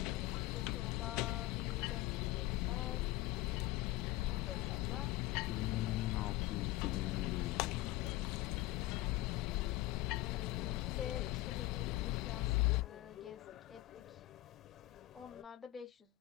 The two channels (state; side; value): quieter; right; 17.5 dB